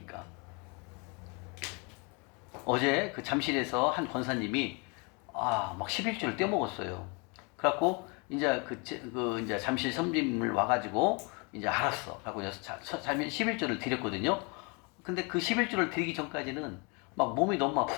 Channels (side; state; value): right; quieter; 31.9 dB